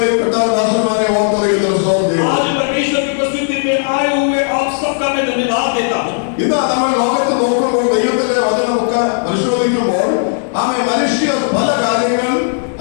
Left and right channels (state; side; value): silent; right; digital silence